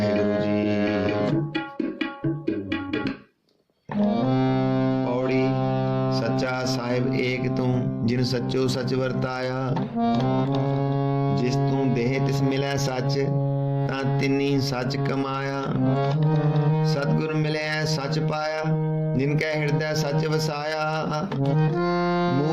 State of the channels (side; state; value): both; identical; correlation 1.00